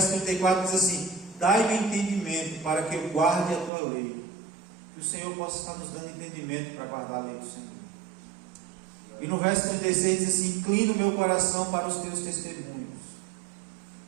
34 diz assim: dai-me entendimento para que eu guarde a tua lei. Que o Senhor possa estar nos dando entendimento para guardar a lei do Senhor. E no verso 36 diz assim: inclina o meu coração para os teus testemunhos.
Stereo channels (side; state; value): left; drops out; at 3.7 s